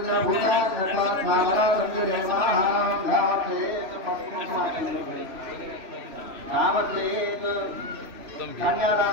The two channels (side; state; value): left; late; 3.0 ms